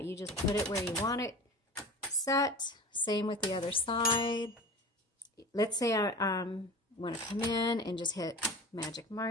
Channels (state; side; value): normal; both; correlation 0.35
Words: You just put it where you want it set. Same with the other side. Let's say I want to come in and just hit magic